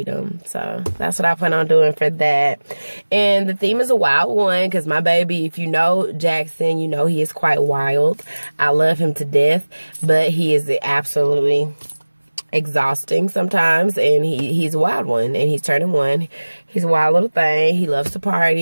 them. So that's what I plan on doing for that. And the theme is a wild one, because my baby, if you know Jackson, you know he is quite wild. I love him to death, but he is absolutely exhausting sometimes, and he's a wild one, and he's turning 1. He's a wild little thing. He loves to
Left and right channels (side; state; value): both; inverted; correlation -1.00